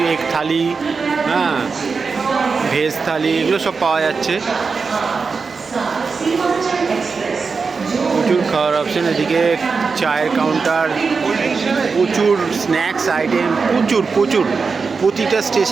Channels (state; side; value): quieter; left; 4.9 dB